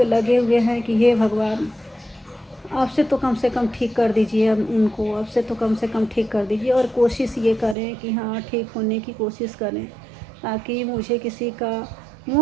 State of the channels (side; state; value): left; drops out; at 7.8 s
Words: लगे हुए हैं कि हे भगवान, आपसे तो कम से कम ठीक कर दीजिए उनको, आपसे तो कम से कम ठीक कर दीजिए। और कोशिश ये करें कि हाँ, ठीक होने की कोशिश करें, ताकि मुझे किसी का